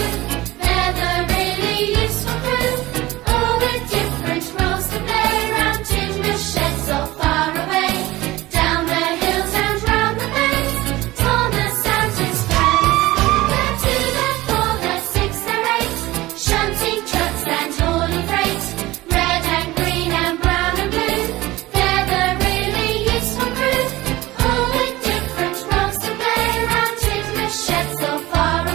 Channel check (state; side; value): quieter; left; 18.4 dB